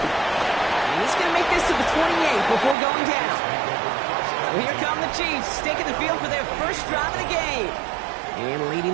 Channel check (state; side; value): drops out; left; at 2.8 s